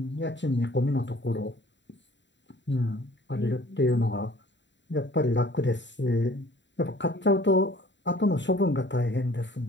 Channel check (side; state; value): right; late; 0.52 ms